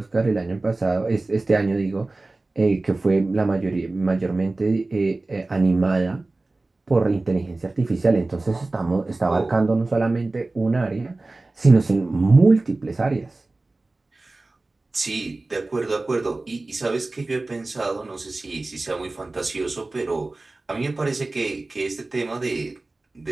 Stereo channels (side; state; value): left; quieter; 3.1 dB